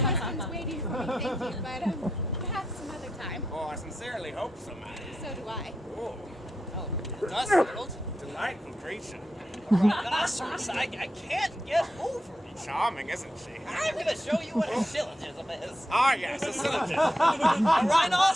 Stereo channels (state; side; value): normal; both; correlation 0.85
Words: waiting for me, thank you, but perhaps some other time. Oh, I sincerely hope so, man. So do I. Oh, Oh, dust settled. delightful creature. Rhinoceros, I can't get over it. Charming, isn't she? I'm gonna show you what a syllogism is. Ah, yes, a syllogism. A